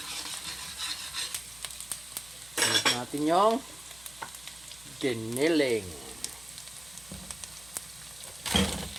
Lagyan natin yung giniling.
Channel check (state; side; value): noise; right; hum, 22 dB below the sound